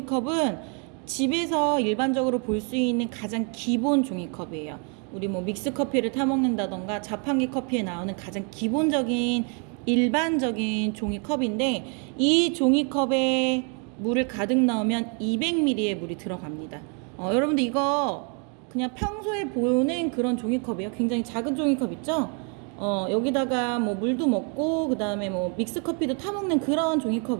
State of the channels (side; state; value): left; quieter; 37.9 dB